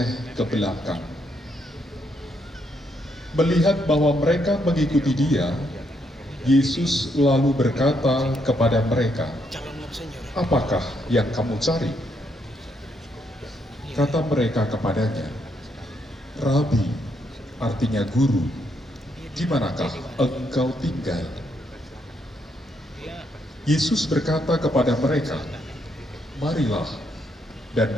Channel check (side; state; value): both; normal; correlation 0.76